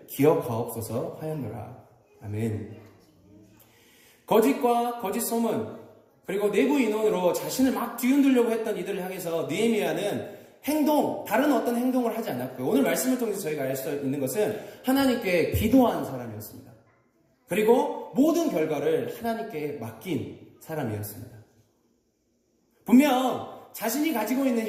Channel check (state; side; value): identical; both; correlation 1.00